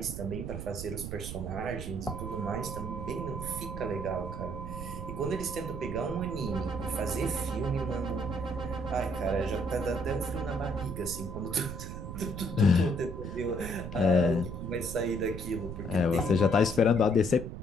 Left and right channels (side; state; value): right; noise; rumble, 7 dB below the sound